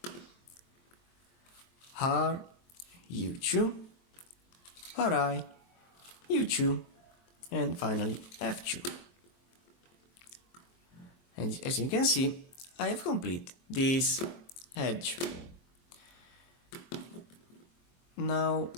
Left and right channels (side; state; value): right; late; 23 ms